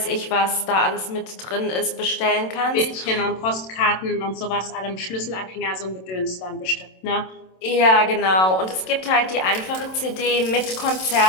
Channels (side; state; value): right; late; 27 ms